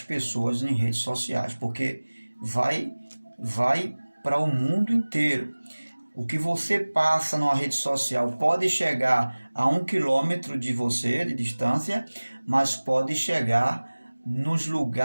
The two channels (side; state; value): both; inverted; correlation -1.00